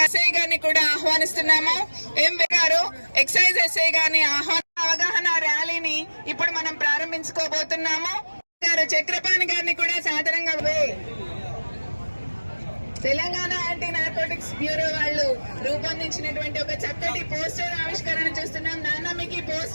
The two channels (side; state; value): both; inverted; correlation -1.00